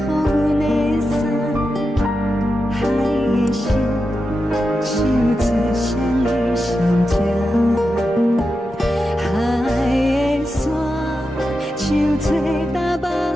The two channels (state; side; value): normal; both; correlation 0.89